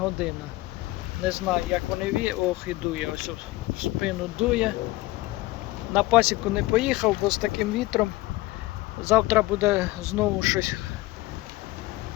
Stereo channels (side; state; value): right; quieter; 19.2 dB